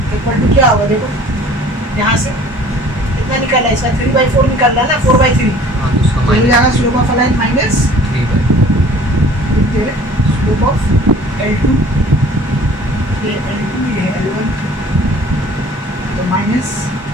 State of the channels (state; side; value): normal; both; correlation 0.50